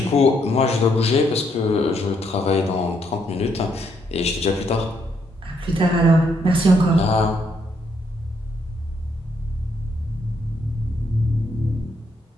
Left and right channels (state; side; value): normal; both; correlation 0.74